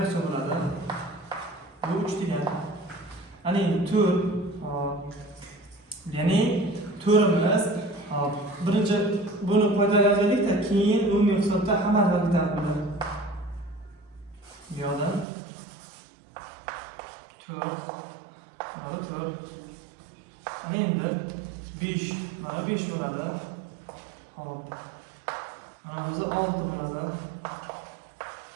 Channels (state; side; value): drops out; left; at 15.2 s